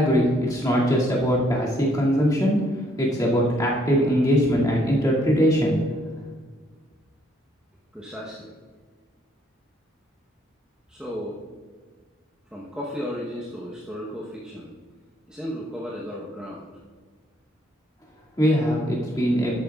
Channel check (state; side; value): normal; both; correlation 0.68